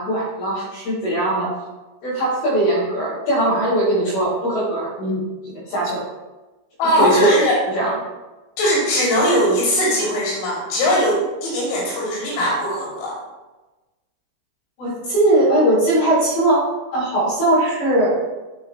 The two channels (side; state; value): right; late; 21 ms